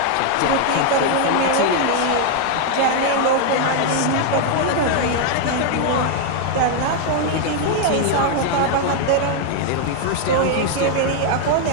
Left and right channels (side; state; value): both; different; correlation 0.00